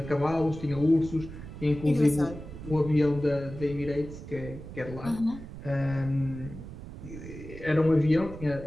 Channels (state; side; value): noise; right; rumble, 12 dB below the sound